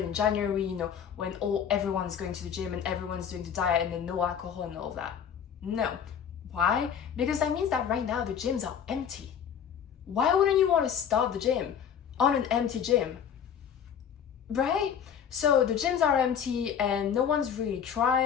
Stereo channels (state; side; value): quieter; right; 8.1 dB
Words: in January, you know, when everyone's going to the gym and everyone's doing the diet and then no alcohol and all of that. No. Why? Because that means that right now the gyms are empty. Why wouldn't you want to start the gym on an empty gym? Right? So the gyms are empty and no one's really